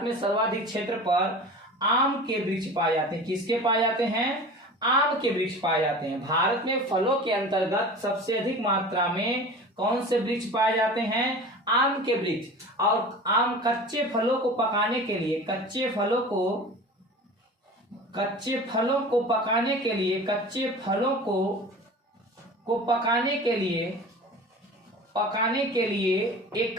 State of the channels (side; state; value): both; normal; correlation 0.37